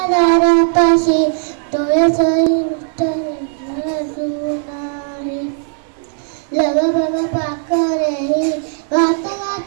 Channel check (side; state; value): left; silent; digital silence